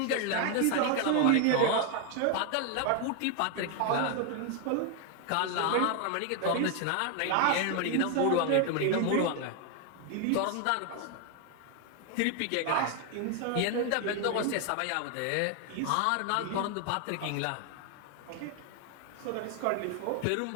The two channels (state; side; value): different; both; correlation 0.01